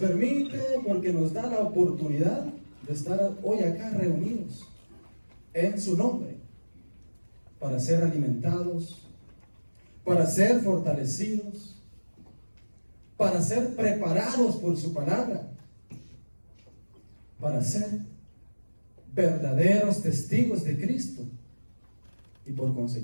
porque nos da la oportunidad de estar hoy acá reunidos en su nombre para ser alimentados, para ser fortalecidos, para ser preparados por su palabra, para ser verdaderos testigos de Cristo y por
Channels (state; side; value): inverted; both; correlation -1.00